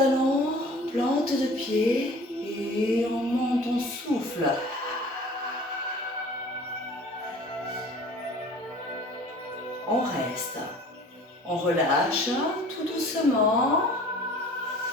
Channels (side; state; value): both; normal; correlation 0.47